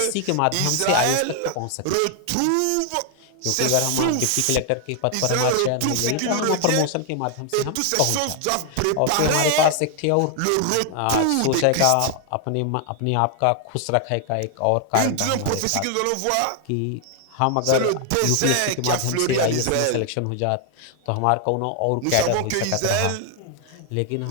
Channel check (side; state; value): both; different; correlation 0.00